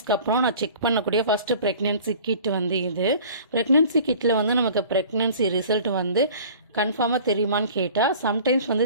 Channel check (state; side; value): inverted; both; correlation -0.45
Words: அப்புறம் நான் செக் பண்ணக்கூடிய ஃபஸ்ட்டு ப்ரெக்னென்சி கிட் வந்து இது. ப்ரெக்னென்சி கிட்டில் வந்து நமக்கு ப்ரெக்னென்சி ரிசல்ட் வந்து கன்ஃபார்மாக தெரியுமான்னு கேட்டால் சம்டைம்ஸ் வந்து